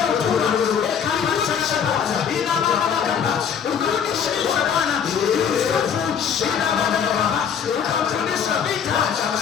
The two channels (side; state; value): right; quieter; 7.6 dB